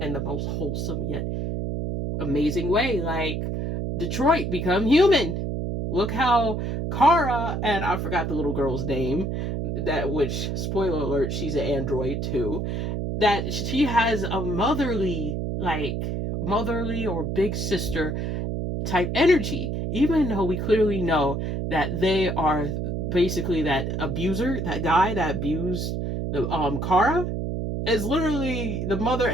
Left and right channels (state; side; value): noise; right; hum, 2 dB below the sound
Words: in the most wholesome yet amazing way. Like Detroit Become Human. Look how Kara, and I forgot the little girl's name, which, spoiler alert, she's an android too, that she has a motherly or big sister type energy, even though we clearly know that they are basically that abuser, that guy that abused the Kara, is literally the mother